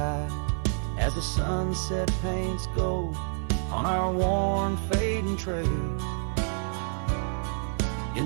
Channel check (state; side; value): silent; left; digital silence